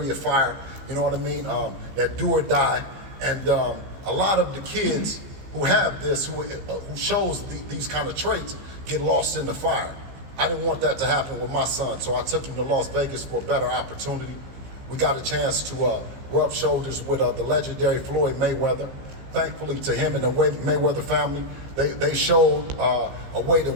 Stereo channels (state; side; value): late; left; 15 ms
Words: fire. You know what I mean? That do or die. And a lot of the kids who have this, who shows these kind of traits, get lost in the fire. I didn't want that to happen with my son, so I took him to Las Vegas for a better opportunity. We got a chance to rub shoulders with the legendary Floyd Mayweather. Thankfully to him and the Mayweather family, they showed a way that